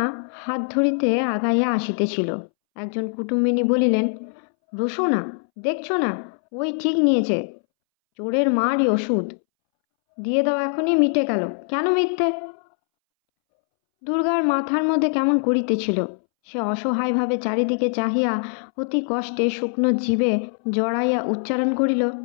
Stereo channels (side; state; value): right; silent; 64 dB below the other